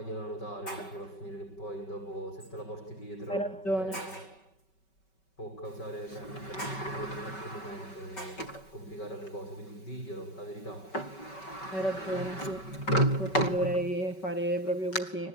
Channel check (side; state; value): right; late; 5.3 ms